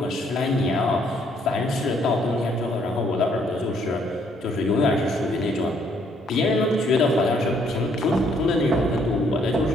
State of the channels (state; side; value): normal; both; correlation 0.67